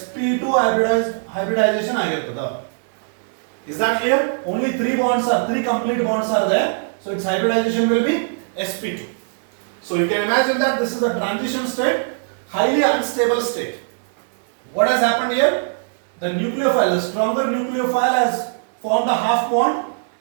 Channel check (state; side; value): silent; left; digital silence